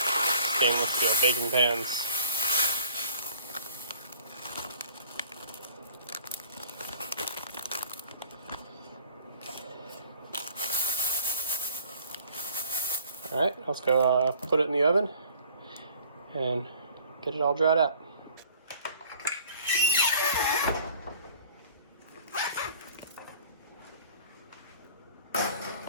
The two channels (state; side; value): inverted; both; correlation -0.53